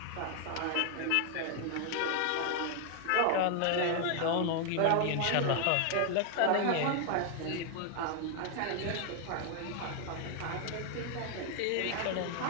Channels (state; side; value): different; both; correlation 0.00